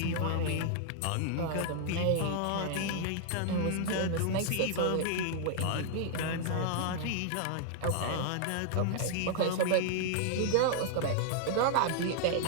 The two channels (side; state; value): both; different; correlation 0.00